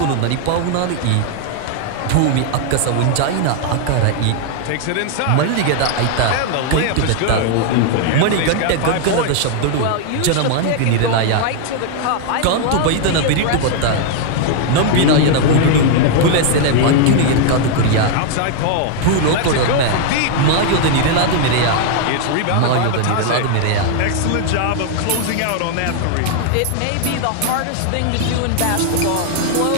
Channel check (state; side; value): different; both; correlation 0.00